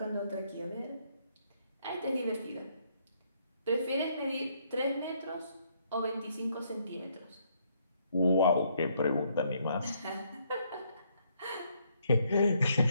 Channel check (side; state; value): both; inverted; correlation -0.71